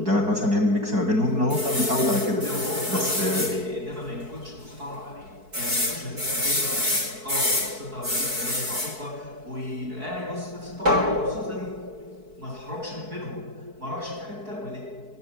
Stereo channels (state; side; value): late; left; 4.6 ms